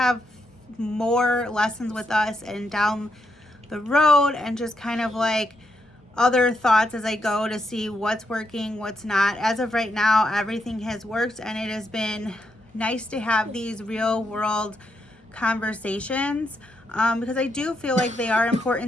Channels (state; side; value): normal; both; correlation 0.80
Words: more lessons with us and down the road and just kind of like other thoughts as I go to see what's working, what's not. As of right now, everything has worked, and it has been nice to have these real world conversations because I do feel like they are